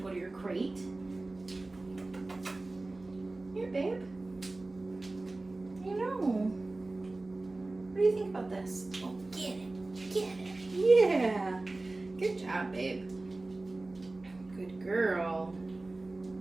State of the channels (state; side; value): quieter; left; 3.1 dB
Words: go to your crate. Here, babe. What do you think about this? Oh, get it, get it. Yeah. Good job, babe. Good girl.